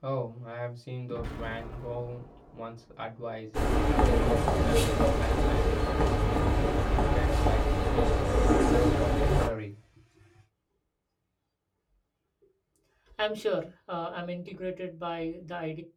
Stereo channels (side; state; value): both; identical; correlation 1.00